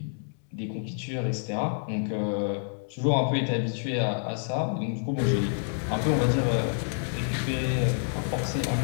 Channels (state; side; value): silent; right; digital silence